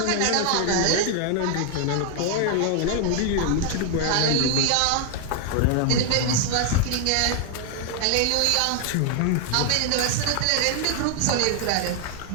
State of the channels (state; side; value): different; both; correlation 0.00